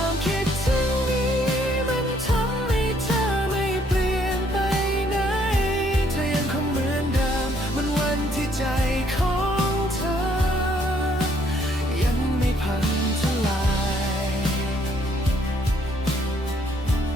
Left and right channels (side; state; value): both; normal; correlation 0.67